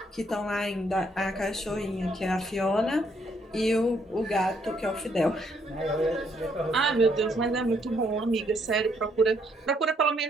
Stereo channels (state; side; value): normal; both; correlation 0.71